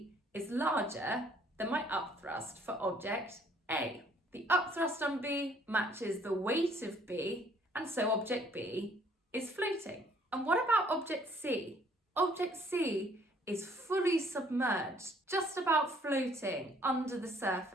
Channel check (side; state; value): both; normal; correlation 0.61